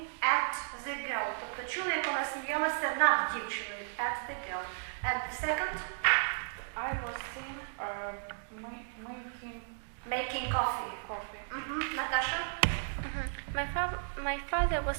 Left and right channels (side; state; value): left; silent; digital silence